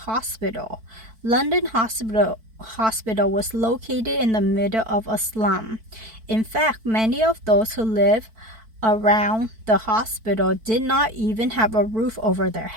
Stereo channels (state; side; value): late; left; 4.5 ms